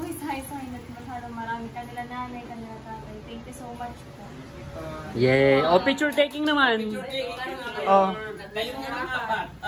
isa-isahin at masyadong marami. Kanila nanay, kanila tatay. Thank you so much po. Yeah. O, picture taking naman. Oh. Kayo muna apat.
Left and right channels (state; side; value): identical; both; correlation 1.00